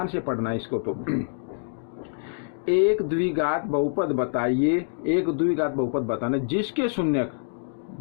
से पढ़ना इसको। तो एक द्विघात बहुपद बताइए, एक द्विघात बहुपद बताना जिसके शून्यक,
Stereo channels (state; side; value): silent; right; digital silence